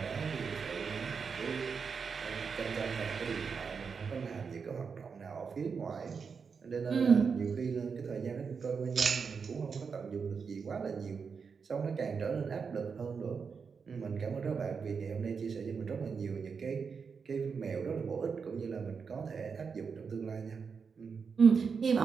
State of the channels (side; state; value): left; quieter; 5.7 dB